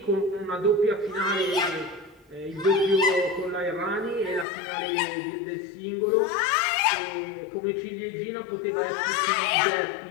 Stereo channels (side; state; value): right; drops out; at 4.5 s